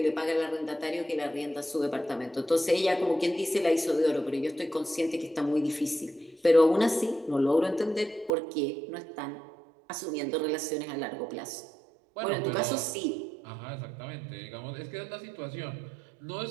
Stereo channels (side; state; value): left; drops out; at 8.3 s